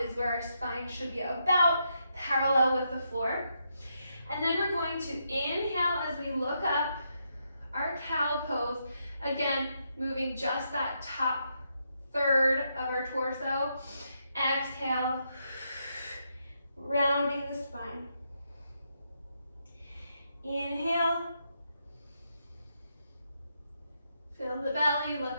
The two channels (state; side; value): inverted; both; correlation -0.80